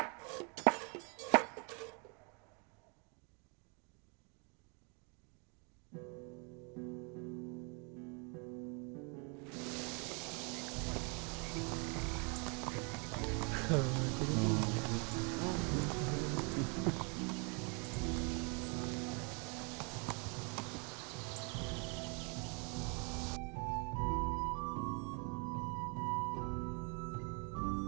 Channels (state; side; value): quieter; left; 34.7 dB